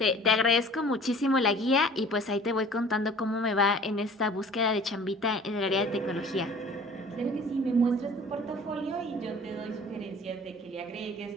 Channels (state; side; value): normal; both; correlation 0.48